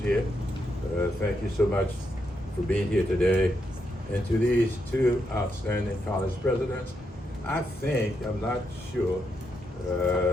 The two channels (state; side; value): normal; both; correlation 0.81